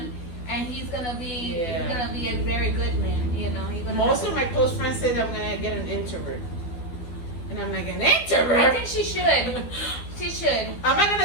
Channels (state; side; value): late; right; 12 ms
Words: And he's gonna be a very good man, you know. Most of my close friends say that I'm gonna get an introvert, and I'm like, an introvert. I think she should. She should. I'm not